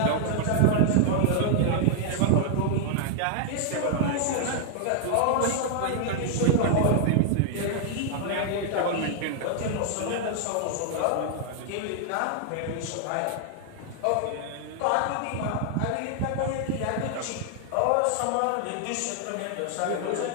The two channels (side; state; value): both; different; correlation 0.00